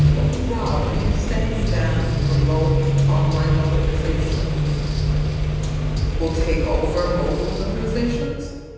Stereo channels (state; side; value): identical; both; correlation 1.00